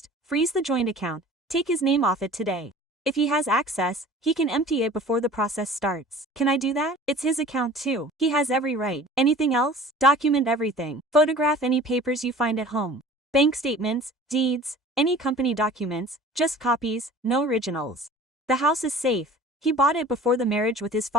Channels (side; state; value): both; normal; correlation 0.44